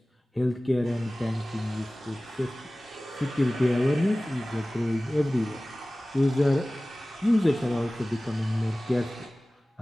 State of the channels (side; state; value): both; normal; correlation 0.98